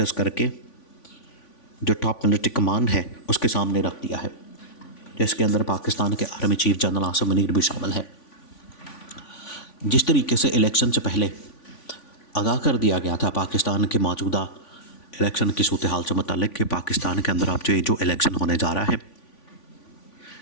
करके जो टॉप मिलिट्री कमांड है उसके सामने रख दिया है, जिसके अंदर पाकिस्तान के army chief general Asim Munir भी शामिल है। जिस तरीके से इलेक्शन से पहले आगाह कर दिया गया था पाकिस्तान के मौजूदा इलेक्शन की सूरत हाल से मुताल्लिक़ कि पाकिस्तान के अंदर अब जो इलेक्शन होने जा रहा है,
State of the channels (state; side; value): late; right; 3.5 ms